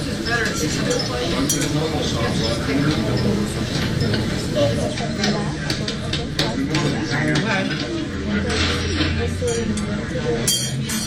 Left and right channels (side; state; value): both; identical; correlation 1.00